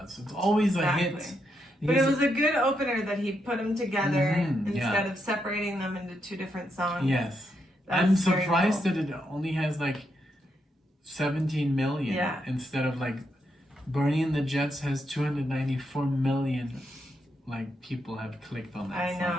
It's always a hit. But it was a good opener that he put them together instead of separating them into two different songs. Yes, I'm surprised that it only has like 17 million instead of like Bernie and the Jets has 294 million like people have clicked on that I song.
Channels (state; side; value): normal; both; correlation 0.81